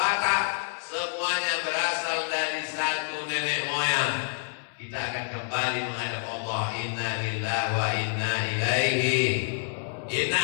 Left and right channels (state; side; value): silent; right; digital silence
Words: semuanya berasal dari satu nenek moyang. Kita akan kembali menghadap Allah. Inna lillahi wa inna ilaihi. Inna